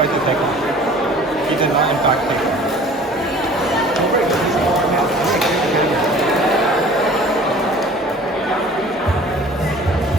to take off. He did not in fact take off.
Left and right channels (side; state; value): both; normal; correlation 0.47